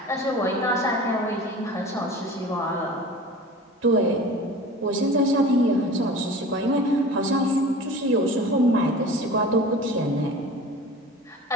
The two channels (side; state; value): both; normal; correlation 0.38